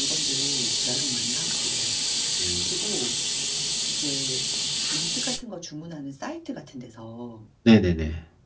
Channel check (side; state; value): both; identical; correlation 1.00